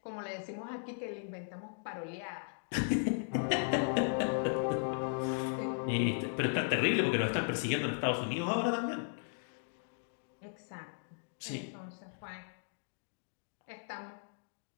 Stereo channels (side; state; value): right; silent; digital silence